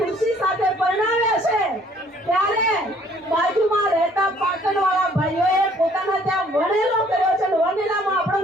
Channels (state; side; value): normal; both; correlation 0.60